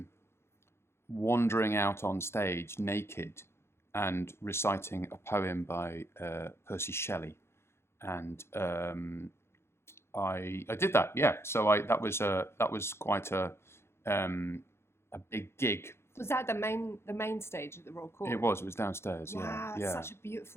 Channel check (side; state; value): right; late; 0.12 ms